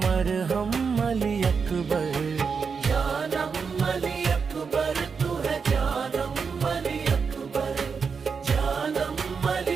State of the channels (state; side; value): quieter; left; 5.6 dB